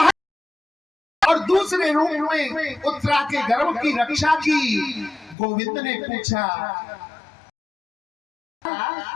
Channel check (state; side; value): drops out; right; at 5.4 s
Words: और दूसरे रूप में उत्तरा के गर्भ की रक्षा की। गोविंद ने पूछा,